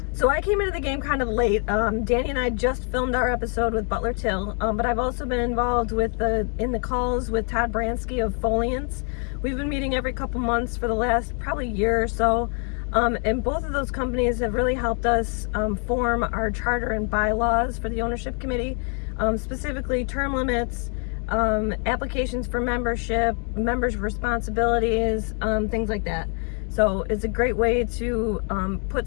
So I came into the game kind of late. Danny and I just filmed our episode with Butler Till, but I've also been involved with in the calls with Todd Bransky of Foliants. We've been meeting every couple months for the last probably year or so. And both of those companies have really helped us form our charter and bylaws for the ownership committee, specifically term limits, applications for membership, members' responsibilities, things like that. So it's a great way to put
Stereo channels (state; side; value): quieter; right; 39.8 dB